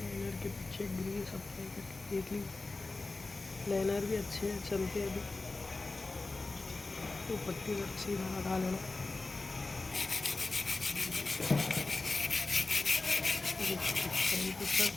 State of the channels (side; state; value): right; quieter; 3.5 dB